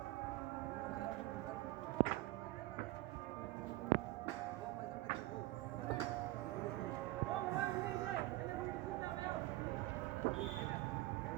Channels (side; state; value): left; quieter; 18.4 dB